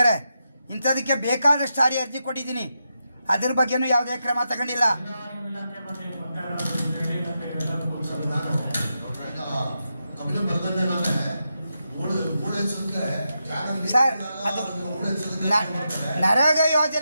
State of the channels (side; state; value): both; inverted; correlation -0.86